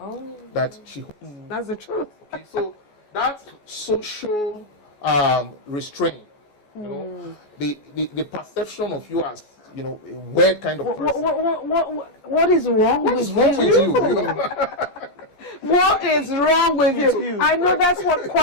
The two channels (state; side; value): late; right; 14 ms